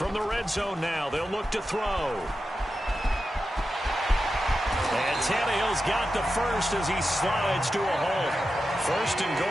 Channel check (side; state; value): both; normal; correlation 0.91